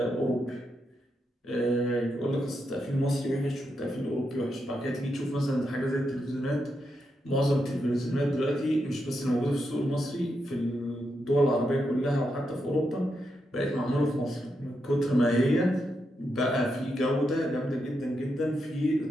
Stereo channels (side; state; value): both; normal; correlation 0.84